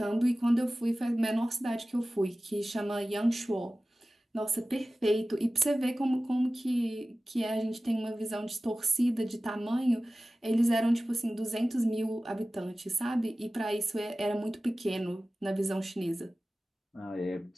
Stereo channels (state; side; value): normal; both; correlation 0.96